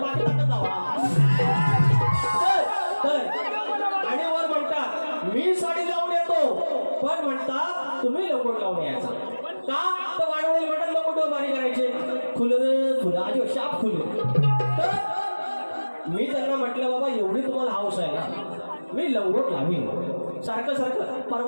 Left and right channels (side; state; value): both; inverted; correlation -1.00